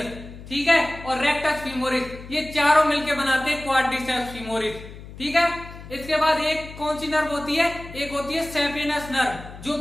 ठीक है। और रेक्टस फीमोरिस, ये चारों मिलकर बनाते हैं क्वाड्रिसेप्स फीमोरिस, ठीक है। इसके बाद एक कौन सी नर्व होती है, एक होती है सेपिनस नर्व, जो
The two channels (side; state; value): left; noise; hum, 15 dB below the sound